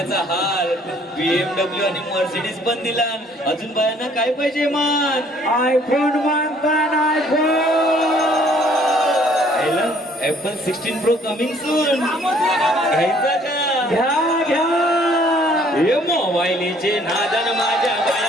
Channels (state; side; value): normal; both; correlation 0.60